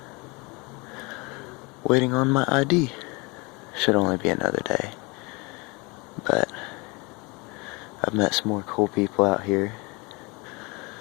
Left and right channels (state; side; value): quieter; right; 27.7 dB